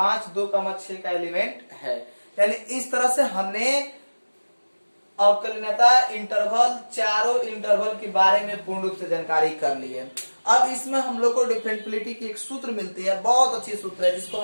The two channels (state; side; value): inverted; both; correlation -1.00